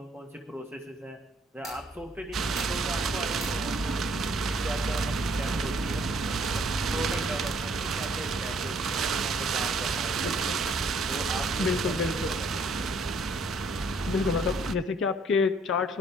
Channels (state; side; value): normal; both; correlation 0.63